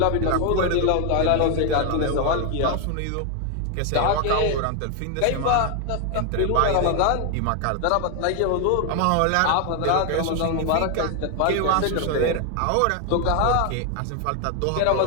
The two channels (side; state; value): both; different; correlation 0.01